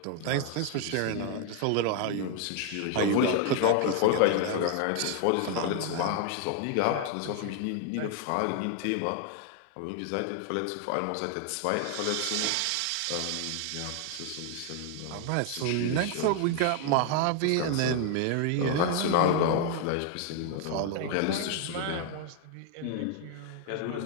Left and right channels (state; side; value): different; both; correlation 0.00